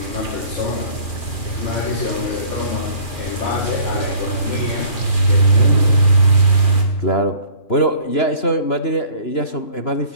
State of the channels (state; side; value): late; right; 2.4 ms